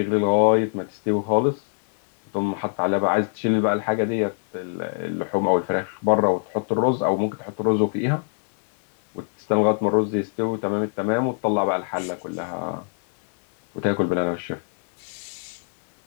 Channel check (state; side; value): silent; right; 63 dB below the other